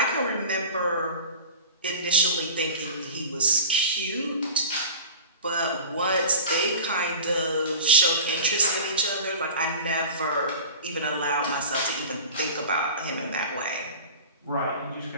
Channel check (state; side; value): inverted; both; correlation -0.36